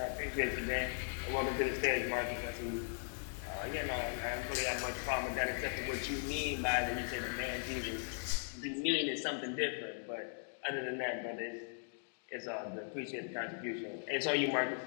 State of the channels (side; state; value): right; silent; digital silence